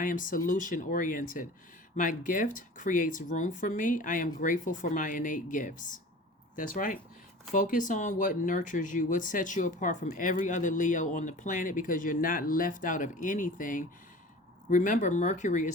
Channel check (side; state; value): both; normal; correlation 0.40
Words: am solution oriented. My gift creates room for me. I am grateful for my innate gifts. That's right. Focus on what nurtures you, what sets you apart from every other Leo on the planet, because you're not left out of anything. Remember, Mercury